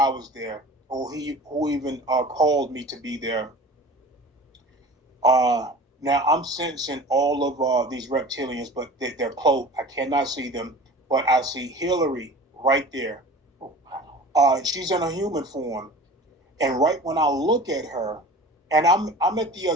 I was there or who even called me to be there. Uh, Now I'm sensing all of these reptilians, but they're cloaked. I cannot see them, but I see Hillary right there. She's in a human form, and right when I look at her, and I'm at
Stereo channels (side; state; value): both; normal; correlation 0.40